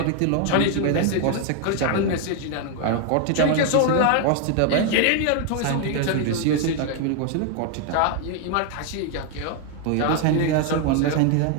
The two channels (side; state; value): both; different; correlation 0.00